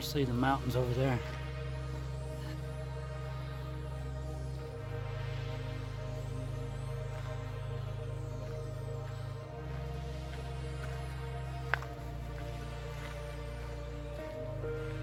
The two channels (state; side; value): identical; both; correlation 1.00